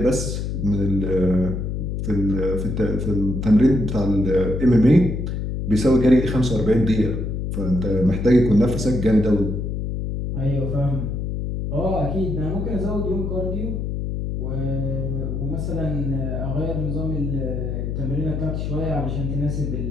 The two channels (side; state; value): left; noise; hum, 3 dB below the sound